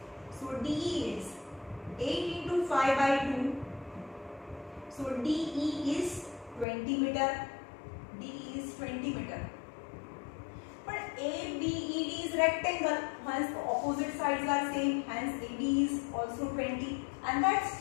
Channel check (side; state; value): right; drops out; at 6.7 s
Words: So DE is 8 into 5 by 2. So DE is 20 meter. DE is 20 meter. But ABED is rectangle. Hence the opposite sides are same. Hence AD is also 20. And